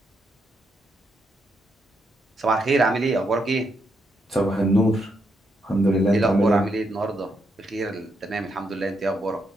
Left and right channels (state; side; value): normal; both; correlation 0.79